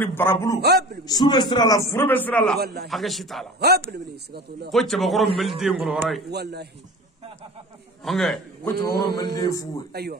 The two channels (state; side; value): normal; both; correlation 0.38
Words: barabulu sube sira la furbe sira la haga shitala Habli. Sigatullah. ko chaba goro melde ngolo horay Wallahi. ange ko chaba goro melde fu Aywa.